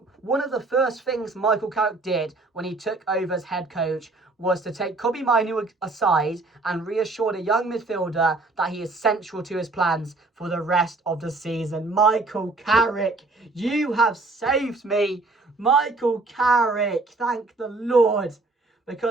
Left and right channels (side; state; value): left; quieter; 3.4 dB